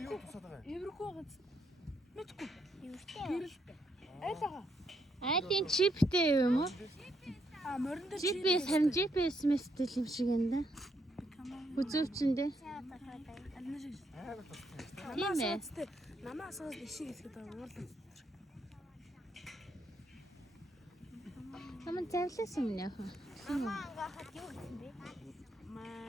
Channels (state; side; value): normal; both; correlation 0.76